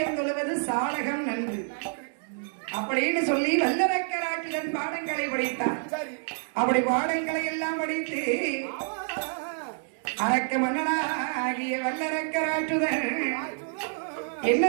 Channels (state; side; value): silent; left; digital silence